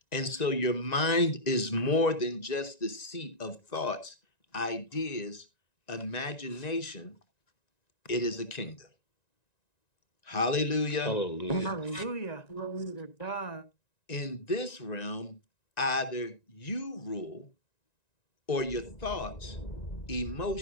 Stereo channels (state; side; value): late; right; 1.9 ms